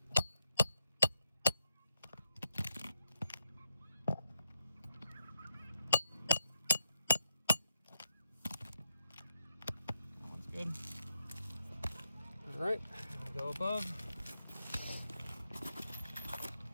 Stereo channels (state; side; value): inverted; both; correlation -0.82